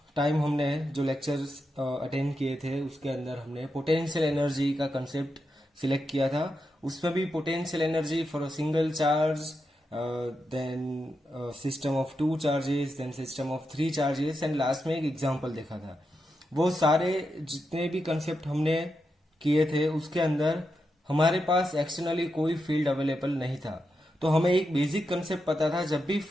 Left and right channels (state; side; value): normal; both; correlation 0.86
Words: time हमने जो lectures attend किए थे उसके अंदर हमने पोटेंशियल एनर्जी का कंसेप्ट सिलेक्ट किया था. उसमें भी potential energy for a single charge, then system of 2 charges, then system of 3 charges and last में एक एग्जांपल देखा था. वो सारे जितने भी कंसेप्ट हमने किए थे उसके अंदर हमारे पास एक्सटर्नली कोई फील्ड अवेलेबल नहीं था. तो हमें एक बेसिक कंसेप्ट पता था, जब भी